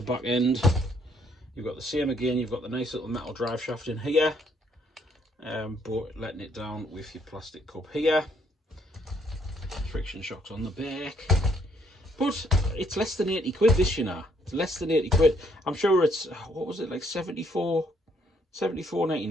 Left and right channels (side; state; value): both; normal; correlation 0.68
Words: back end. You've got the same again. You've got the nice little metal drive shaft in here. But letting it down with your plastic cup here. Friction shocks on the back. But it's less than 80 quid this, you know. It's less than 80 quid. I'm sure it's, what was it, like